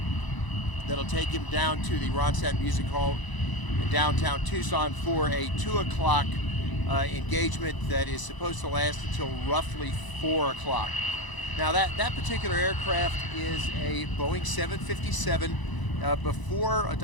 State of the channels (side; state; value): right; late; 1.0 ms